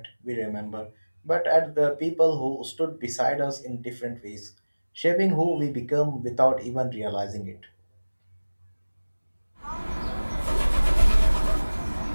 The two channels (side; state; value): both; inverted; correlation -1.00